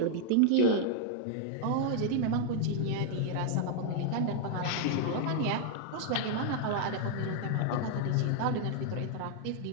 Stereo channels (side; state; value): both; different; correlation 0.00